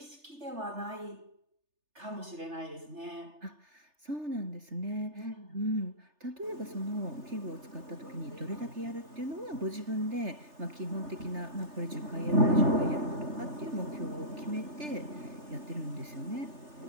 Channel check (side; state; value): left; late; 3.3 ms